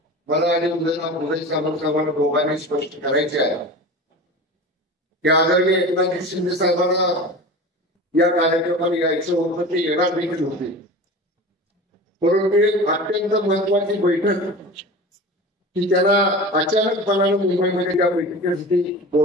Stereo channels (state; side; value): normal; both; correlation 0.33